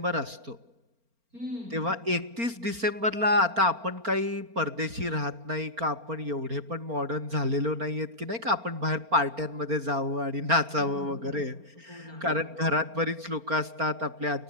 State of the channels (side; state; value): left; late; 4.4 ms